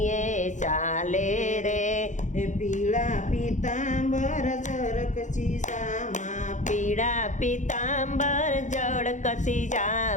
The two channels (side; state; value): right; late; 0.36 ms